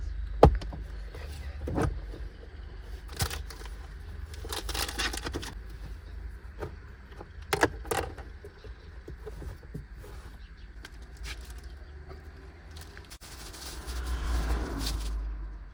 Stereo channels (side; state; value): both; identical; correlation 1.00